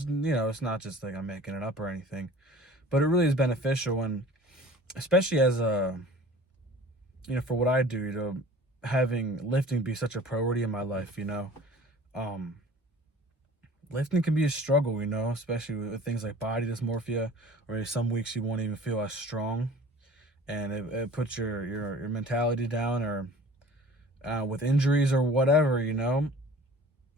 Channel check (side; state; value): both; normal; correlation 0.45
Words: not just like I'm making it up or anything, but it really is beneficial. And especially as for what I do, having lifting be such a priority in my life, lifting can be a struggle, especially with things like body dysmorphia, or some weeks you won't even feel as strong, and it puts your mentality down, or with injuries or whatever,